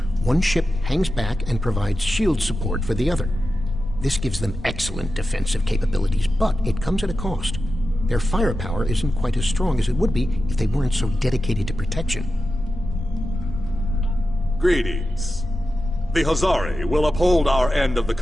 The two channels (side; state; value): both; normal; correlation 0.92